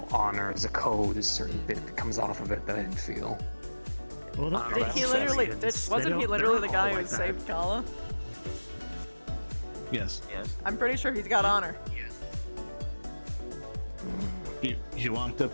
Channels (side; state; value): both; inverted; correlation -1.00